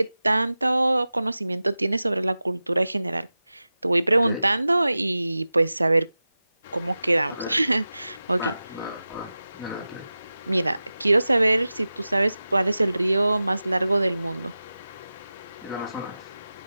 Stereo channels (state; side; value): inverted; both; correlation -0.96